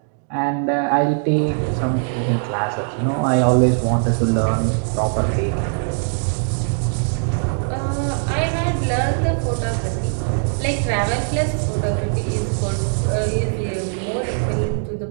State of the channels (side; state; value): left; silent; digital silence